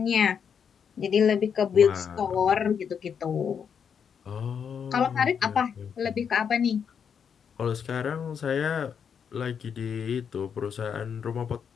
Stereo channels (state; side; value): quieter; right; 7.2 dB